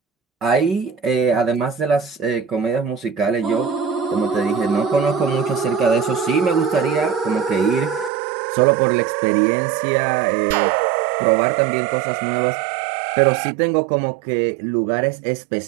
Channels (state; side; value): drops out; left; at 8.1 s